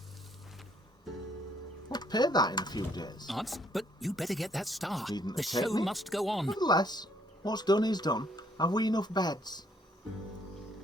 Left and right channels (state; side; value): normal; both; correlation 0.67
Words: We'll pay that in a few days. Arts, but you better get that star. Needn't The take show me. must go on. Nevertheless, what's done is done. Have we enough beds?